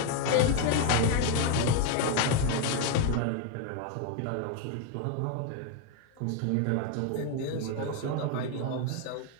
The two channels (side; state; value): both; different; correlation 0.01